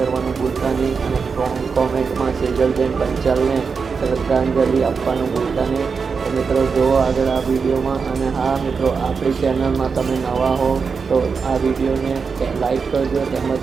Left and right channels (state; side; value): quieter; left; 5.4 dB